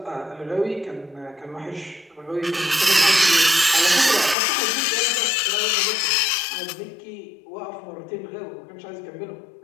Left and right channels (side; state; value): right; drops out; at 4.4 s